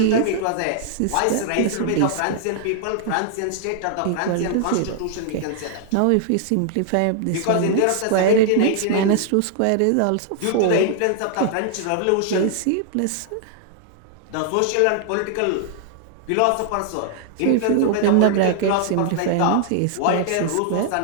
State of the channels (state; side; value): different; both; correlation 0.00